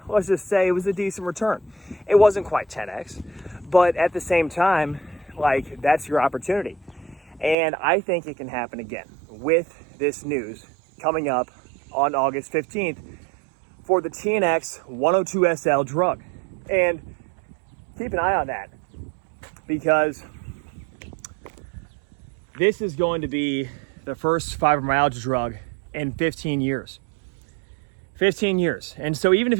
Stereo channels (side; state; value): left; drops out; at 7.6 s